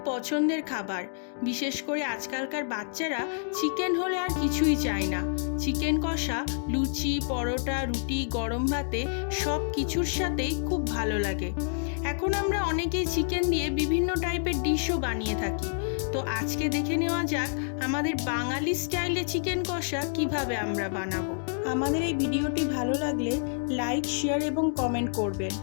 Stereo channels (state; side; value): silent; right; digital silence